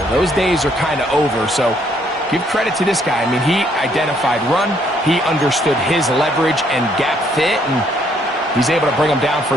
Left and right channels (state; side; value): normal; both; correlation 0.68